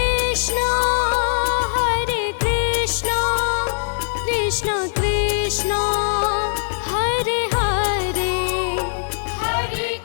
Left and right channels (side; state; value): right; silent; digital silence